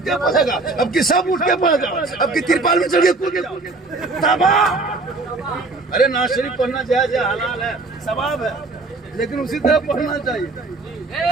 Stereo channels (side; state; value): left; quieter; 3.4 dB